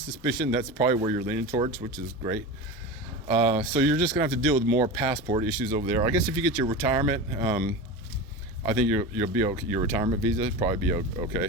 that's probably where you're leaning towards, which is great. So you're just gonna have to deal with more passport issues over there. I guess if you get your retirement, I think you'll be okay. Your retirement visa probably be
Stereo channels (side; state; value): both; normal; correlation 0.26